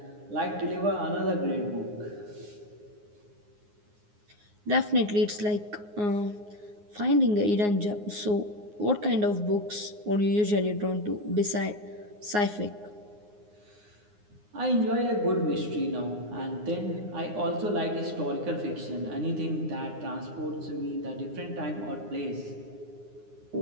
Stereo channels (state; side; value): late; left; 9.7 ms